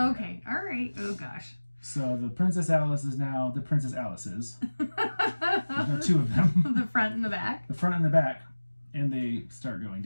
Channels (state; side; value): inverted; both; correlation -1.00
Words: all right. Oh, gosh. So the Princess Alice is now the Princess Alice's. There's no 2 of them. The front and the back. The front and the back. And they start going